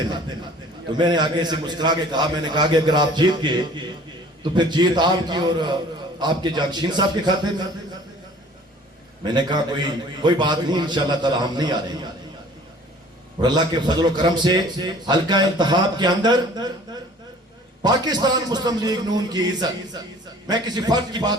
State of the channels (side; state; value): both; normal; correlation 0.50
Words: में। तो मैंने आगे से मुस्कुरा के कहा, मैंने कहा कि अगर आप जीत गए तो फिर जीत आपकी और आपके जागशीन साहब के खाते में। मैंने कहा कोई बात नहीं, इंशाल्लाह ताला हम नहीं आ रहे। और अल्लाह के फजल और करम से हल्का इंतखाब के अंदर पाकिस्तान मुस्लिम लीग नून की इज्जत, मैं किसी फर्द की